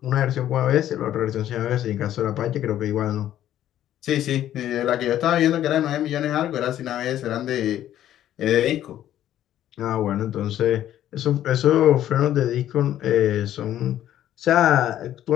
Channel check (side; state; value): right; quieter; 11.9 dB